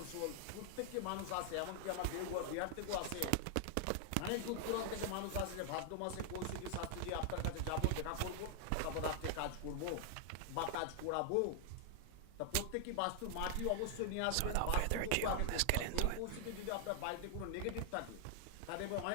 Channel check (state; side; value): different; both; correlation 0.00